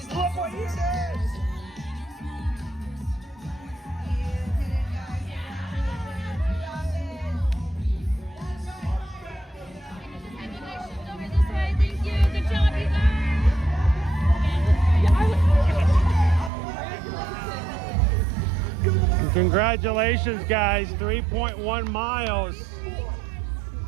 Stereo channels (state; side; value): drops out; left; at 16.5 s